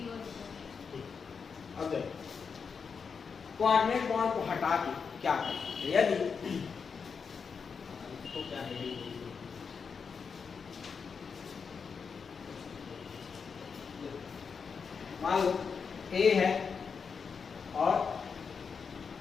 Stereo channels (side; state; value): right; quieter; 5.8 dB